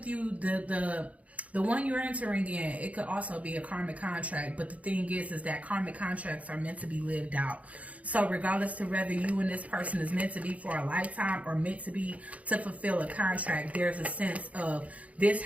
you, the one you're entering in, it could also be a karmic contract. But the thing is that karmic contracts are meant to be lived out. So regardless to whether you and this person is meant to be for a lifetime or meant to be to fulfill a contract, there's a sense of this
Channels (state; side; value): late; left; 0.067 ms